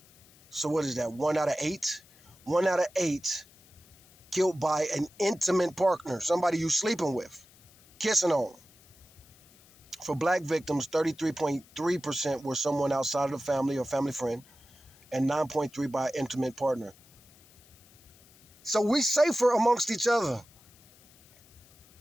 So what is that? 1 out of 8? 1 out of 8 killed by an intimate partner, somebody you sleeping with, kissing on. For black victims, 33.3% were someone outside of the family or family friend, and 9.3% by intimate partner. So we safer amongst each other.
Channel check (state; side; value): noise; left; hiss, 27 dB below the sound